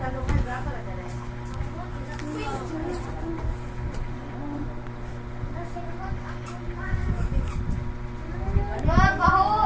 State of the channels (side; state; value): both; identical; correlation 1.00